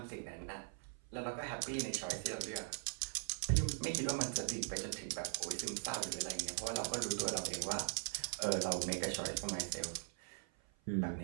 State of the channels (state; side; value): silent; left; 51 dB below the other